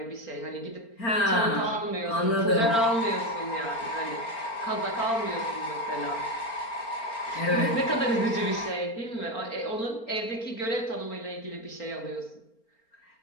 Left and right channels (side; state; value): right; late; 4.4 ms